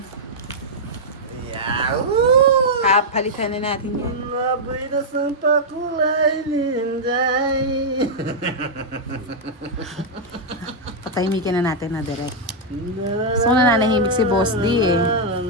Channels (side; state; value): both; normal; correlation -0.05